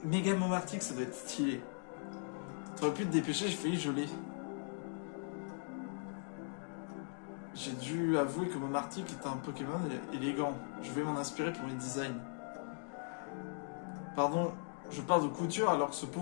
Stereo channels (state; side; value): silent; right; 52 dB below the other